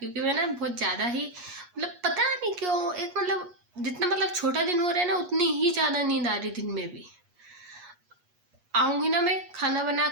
मैं ना बहुत ज़्यादा ही मतलब पता नहीं क्यों, एक मतलब जितना मतलब छोटा दिन हो रहा है ना, उतनी ही ज़्यादा नींद आ रही दिन में भी। आऊँगी ना मैं खाना बना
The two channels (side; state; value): left; late; 8.3 ms